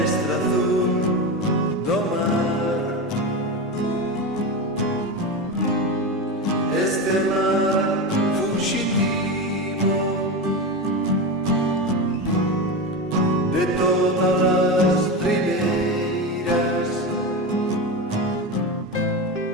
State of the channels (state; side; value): normal; both; correlation 0.20